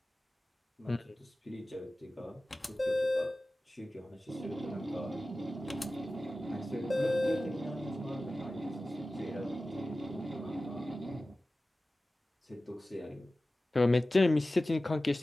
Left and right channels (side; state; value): both; normal; correlation 0.96